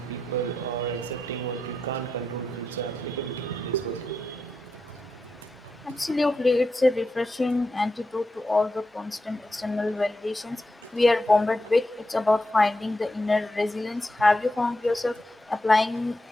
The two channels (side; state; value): both; normal; correlation 0.87